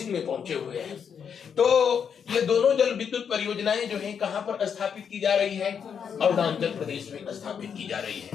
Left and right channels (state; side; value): quieter; right; 7.3 dB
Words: में पहुंचे हुए हैं। तो ये दोनों जल विद्युत परियोजनाएं जो है कहां पर स्थापित की जा रही है, अरुणाचल प्रदेश में स्थापित की जा रही